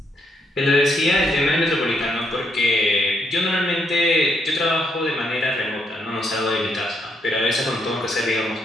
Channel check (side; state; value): both; normal; correlation 0.75